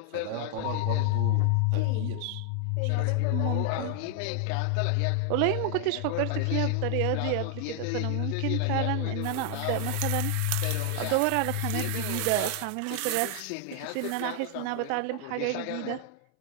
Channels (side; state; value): both; different; correlation 0.00